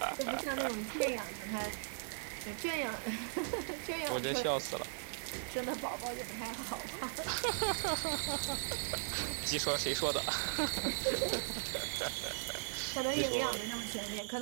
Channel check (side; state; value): left; silent; digital silence